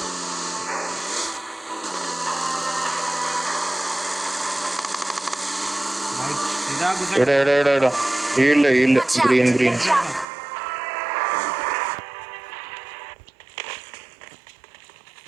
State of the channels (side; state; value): left; drops out; at 10.2 s